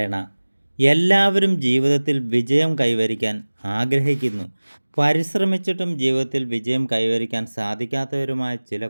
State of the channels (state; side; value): inverted; both; correlation -1.00